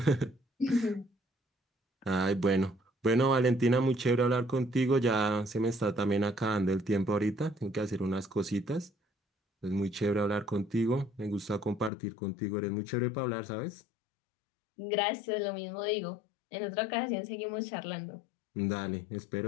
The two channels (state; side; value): drops out; right; at 11.9 s